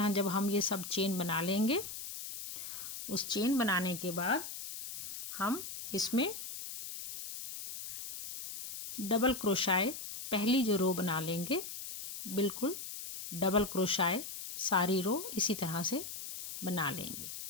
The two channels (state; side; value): noise; left; hiss, 8 dB below the sound